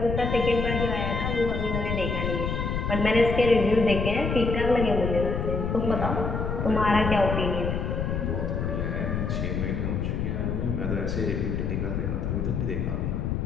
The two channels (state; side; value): noise; left; rumble, 1 dB below the sound